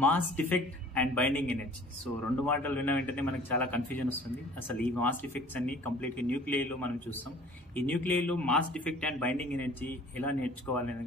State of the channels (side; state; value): both; normal; correlation 0.50